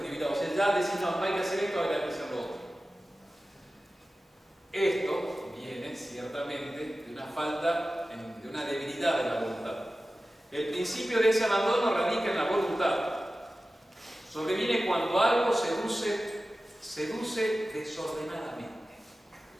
deliberados. O sea, ya decís, no hay que hacer esto, ahora hay que hacer lo otro. Esto viene ciertamente de una falta, de una debilidad de la voluntad. El principio de ese abandono radica en la voluntad. Sobreviene cuando algo seduce desordenadamente.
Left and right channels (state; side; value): normal; both; correlation 0.95